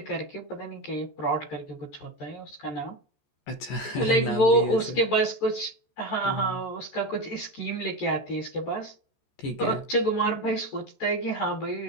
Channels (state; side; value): late; right; 14 ms